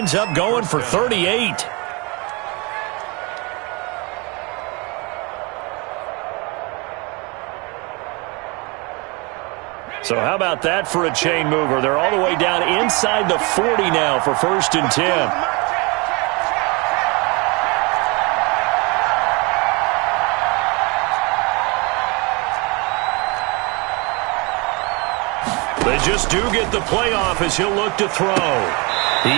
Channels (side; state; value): left; quieter; 28.8 dB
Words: up going for 38. So how about that for a chain mover? They're all the way down inside the 40 now for 1st and 10. They just do get the playoff as he'll look to throw.